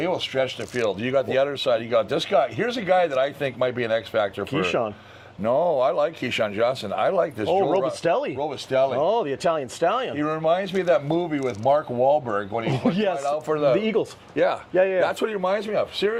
will stretch the field. You got the other side. You got this guy. Here's a guy that I think might be an X factor for Keyshawn. No, I like Keyshawn Johnson. I like this. Robustelli. Robustelli. Oh, the Italian stallion. He reminds me of that movie with Mark Wahlberg when he was out for the Eagles. Yeah. Yeah. That's what he reminds me of.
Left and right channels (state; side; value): identical; both; correlation 1.00